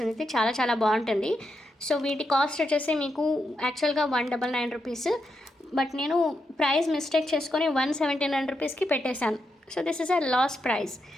ఇది చాలా చాలా బాగుంటుంది. సో వీటి కాస్ట్ వచ్చేసి మీకు యాక్చువల్గా 199 రూపీస్. బట్ నేను ప్రైస్ మిస్టేక్ చేసుకొని 179 రూపీస్కి పెట్టేశాను. So this is a loss price.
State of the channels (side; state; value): both; normal; correlation 0.84